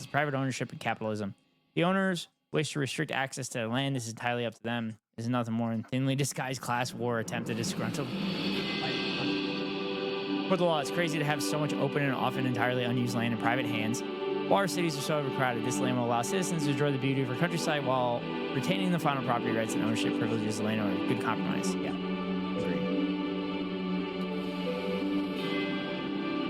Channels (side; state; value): both; identical; correlation 1.00